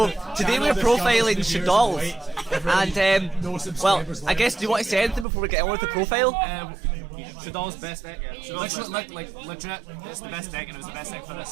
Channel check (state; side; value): drops out; left; at 5.2 s